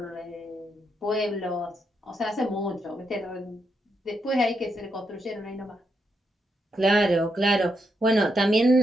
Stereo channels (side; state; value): both; normal; correlation 0.81